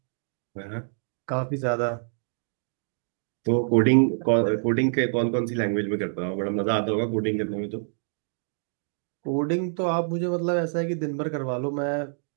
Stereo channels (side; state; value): left; silent; digital silence